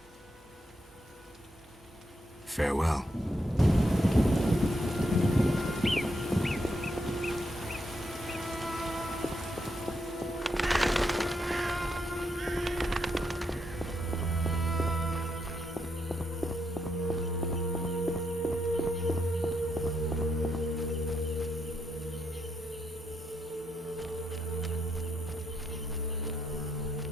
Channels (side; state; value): both; normal; correlation 0.80